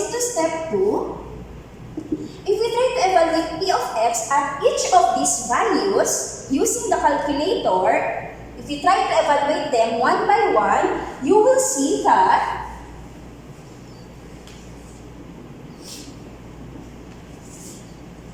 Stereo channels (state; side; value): identical; both; correlation 1.00